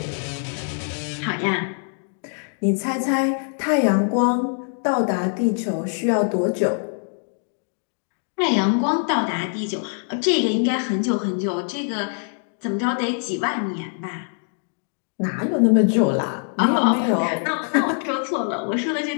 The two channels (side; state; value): right; silent; 56 dB below the other